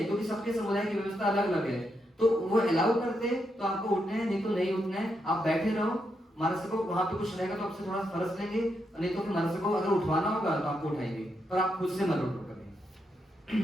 क्योंकि सबके समुदाय की व्यवस्था अलग अलग है, तो वो अलाउ करते तो आपको उठना है, नहीं तो नहीं उठना है, आप बैठे रहो। महाराज को वहां पे कुछ रहेगा तो आपसे थोड़ा फर्ज लेंगे, नहीं तो फिर महाराज को अगर उठवाना होगा तो आपको उठाएंगे, पर आप खुद से मत उठो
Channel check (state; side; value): normal; both; correlation 0.82